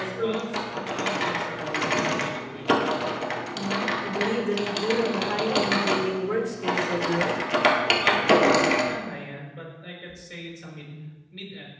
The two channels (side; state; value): both; identical; correlation 1.00